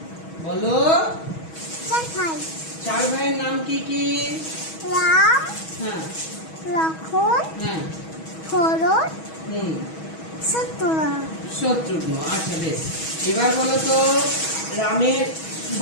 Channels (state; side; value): late; right; 6.2 ms